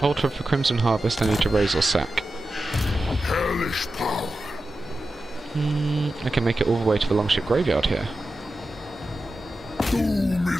Altar of the Crimson Harvest. I need to raise or sack. hellish power. I can make it all the way to the Longship Graveyard here. Doom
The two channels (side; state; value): both; normal; correlation 0.92